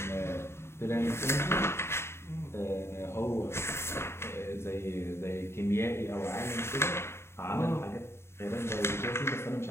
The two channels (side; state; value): right; late; 0.12 ms